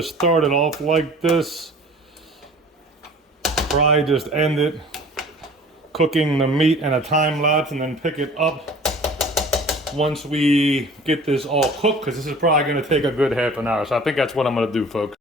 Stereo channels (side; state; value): both; normal; correlation 0.46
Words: start it off like this, probably just end it cooking the meat in a time lapse, and then pick it up once we get this all cooked, because this is probably going to take a good half an hour. So I think that's what I'm going to do, folks.